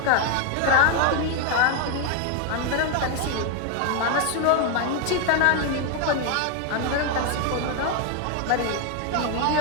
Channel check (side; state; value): both; different; correlation 0.01